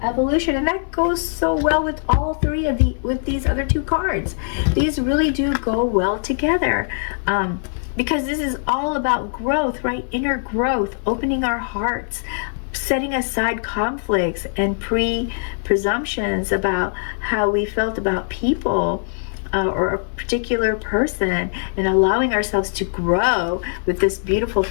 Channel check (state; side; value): silent; right; 65 dB below the other